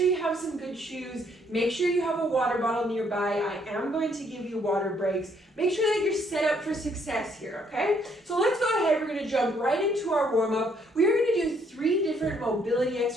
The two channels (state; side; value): normal; both; correlation 0.68